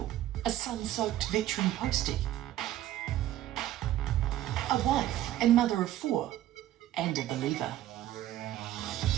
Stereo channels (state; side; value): quieter; left; 13.3 dB